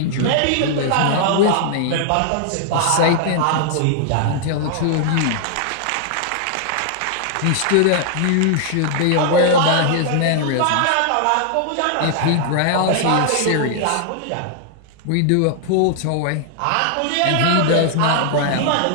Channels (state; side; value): different; both; correlation 0.00